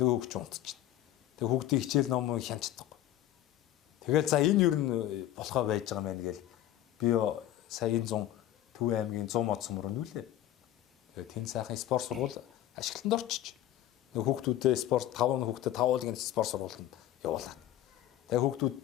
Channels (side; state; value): right; quieter; 13.1 dB